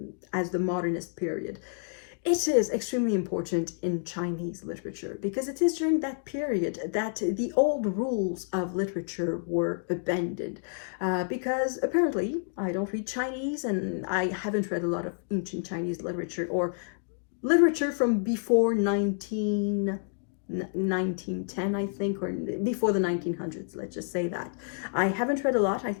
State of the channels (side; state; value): right; silent; digital silence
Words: as the modernist period, it is extremely important in Chinese literature because it is during that period that the old rules of literature were abandoned. Because apparently, I don't read Chinese and I haven't read a lot of ancient Chinese literature or literature from before 1910, I think, or before the 1900s, let's just say that. I haven't read a lot. I